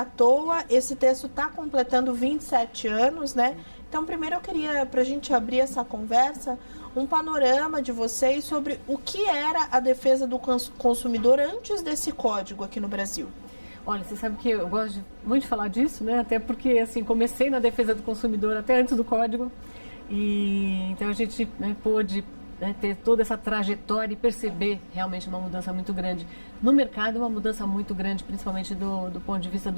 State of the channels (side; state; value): both; inverted; correlation -1.00